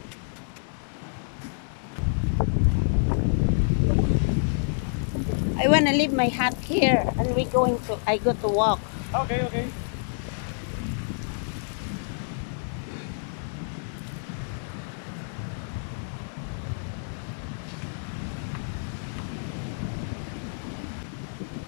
I want to leave my hat here and I go to walk. Okay.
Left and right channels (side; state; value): right; silent; digital silence